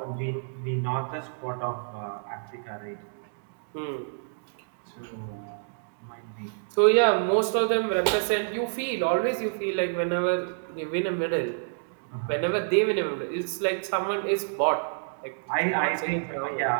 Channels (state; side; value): silent; left; digital silence